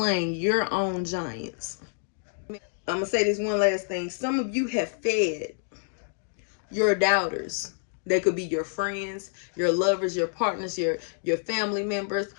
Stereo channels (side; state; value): right; silent; digital silence